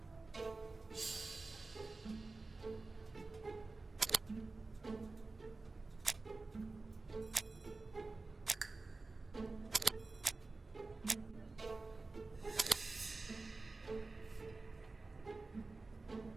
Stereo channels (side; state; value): left; quieter; 3.5 dB